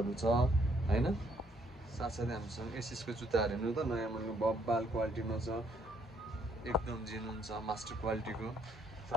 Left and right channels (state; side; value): normal; both; correlation 0.68